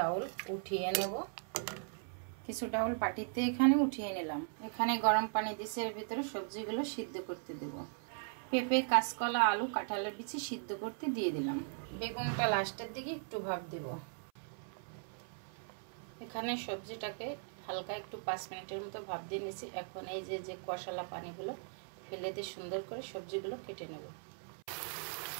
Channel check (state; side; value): silent; left; 52 dB below the other